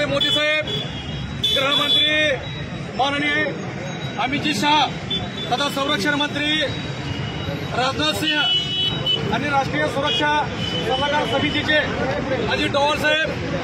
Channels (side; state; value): both; identical; correlation 1.00